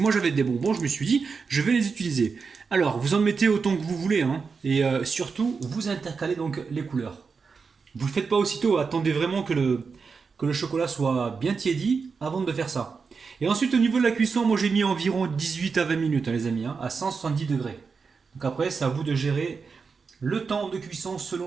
j'avais des bonbons, je me suis dit, je vais les utiliser. Alors, vous en mettez autant que vous voulez. Et surtout, vous intercalez donc les couleurs. Vous ne le faites pas aussitôt. Attendez vraiment que le chocolat soit bien tiédi avant de faire ça. Et ensuite, au niveau de la cuisson, moi, j'ai mis environ 18 à 20 minutes, les amis, à 170 degrés. Donc après, c'est à vous de gérer le temps de cuisson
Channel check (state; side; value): quieter; left; 5.2 dB